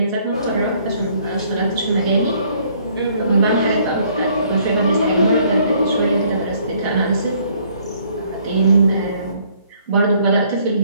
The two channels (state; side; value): inverted; both; correlation -0.63